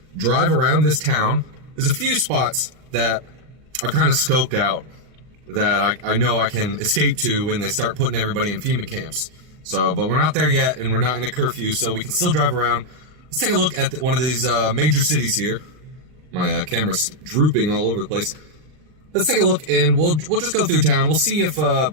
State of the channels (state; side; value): late; left; 39 ms